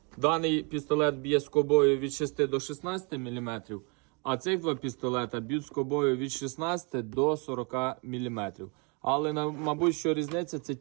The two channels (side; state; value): left; quieter; 33.6 dB